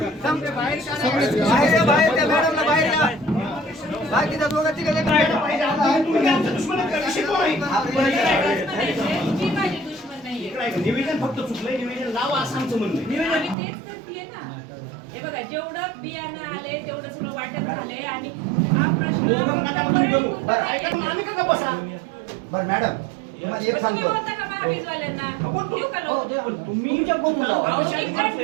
बाहेर बाहेर त्या मॅडमला बाहेर या. बाकीच्या दोघं तिघं तुम्ही आमच्या दुश्मन आहेत का? विषय कोण आहे? मी माझी दुश्मन नाहीये. इकडे आहे. निवेदन फक्त चुकलंय निवेदन लावा असं आमचं म्हणणं आहे. आम्ही तेच करतेय ना. हे बघा जेवढं बियाणं आले तेवढं सगळं वाटत झालंय आणि हा प्रश्न दोघं नका तुम्ही करू. बरं, ऐका मग आम्ही का बसा? बरं मॅडम तुम्हाला एक तुम्ही सांगतो बोलता का महावीजवाल्यांना? देऊ का हो, लोक? द्या. तुमच्या फोन लावा. अहो, मी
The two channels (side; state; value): left; drops out; at 13.6 s